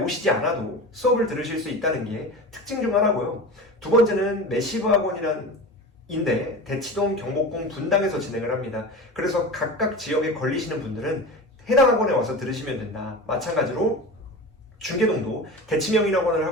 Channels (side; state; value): both; normal; correlation 0.31